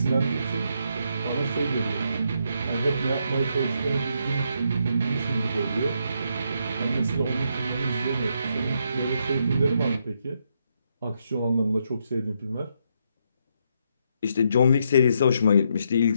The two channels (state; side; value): inverted; both; correlation -0.77